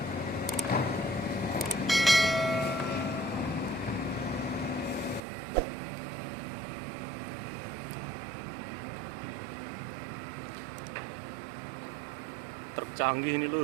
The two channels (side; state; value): left; drops out; at 5.2 s